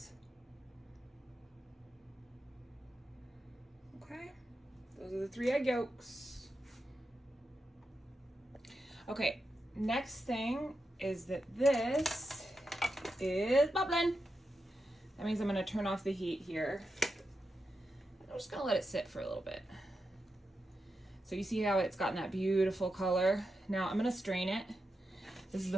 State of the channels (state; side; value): normal; both; correlation 0.88